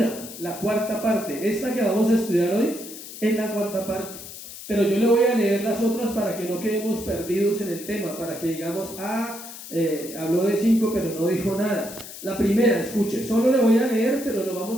la cuarta parte. Esta que vamos a estudiar hoy es la cuarta parte. Pero yo le voy a leer las otras para que no quedemos perdidos en el tema, para que digamos, habló de 5 pero no dijo nada. La primera, escuche, solo le voy a leer, pero nos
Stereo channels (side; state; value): left; noise; hiss, 13 dB below the sound